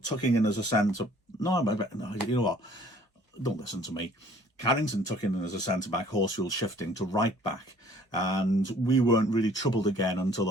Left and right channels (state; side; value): normal; both; correlation 0.55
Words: tucking in as a centre. No, you know what? Don't listen to me. Carrington took in as a centre-back, Horsfield shifting to right-back, and we weren't really troubled again until